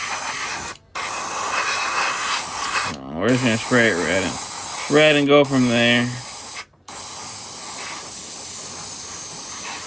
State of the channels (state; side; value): identical; both; correlation 1.00